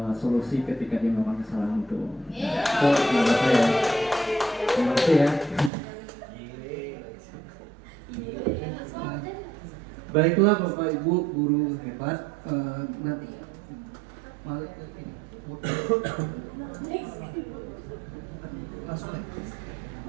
solusi ketika dia melakukan kesalahan itu. Itu menurut saya. Terima kasih ya. Baiklah Bapak Ibu guru hebat, nanti balik ke ini. Langsung ya.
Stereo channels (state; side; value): drops out; left; at 5.7 s